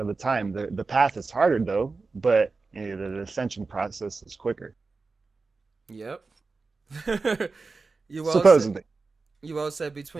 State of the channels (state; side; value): quieter; left; 4.1 dB